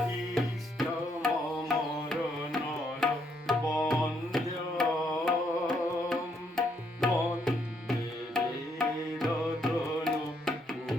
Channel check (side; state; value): both; normal; correlation 0.73